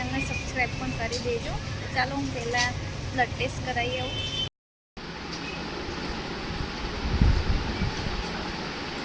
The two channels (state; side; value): identical; both; correlation 1.00